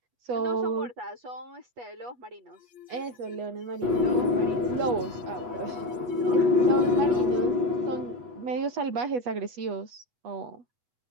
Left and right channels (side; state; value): left; late; 8.2 ms